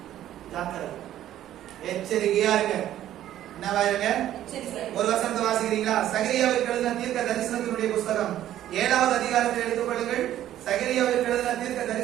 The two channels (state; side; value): quieter; left; 12.3 dB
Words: ஜாக்கிரதை, எச்சரிக்கையா இருங்க. என்னவா இருங்க? ஒரு வசனத்தை வாசிக்கிறீங்களா? சகரியாவிற்கு எழுதின தீர்க்க தரிசனத்தினுடைய புஸ்தகம் 7வது அதிகாரத்தை எடுத்துக் கொள்ளுங்கள். சகரியாவிற்கு எழுதின தீர்க்க